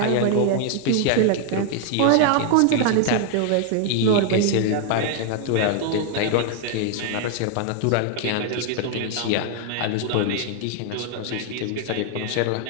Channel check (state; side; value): different; both; correlation 0.00